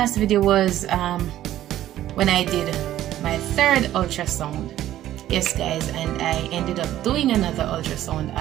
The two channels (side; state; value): left; quieter; 13.1 dB